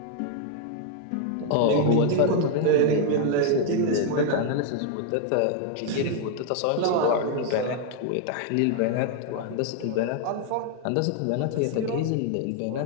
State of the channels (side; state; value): both; different; correlation 0.01